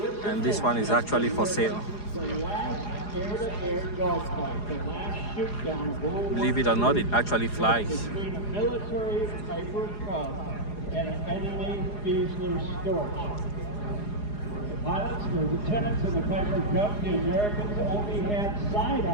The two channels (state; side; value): late; right; 4.8 ms